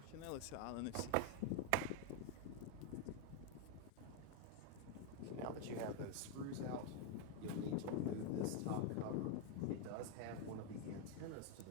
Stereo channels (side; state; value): both; different; correlation 0.01